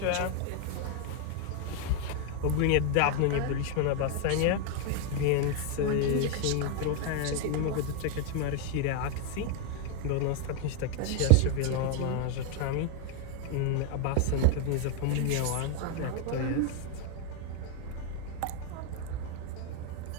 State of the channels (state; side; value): different; both; correlation 0.00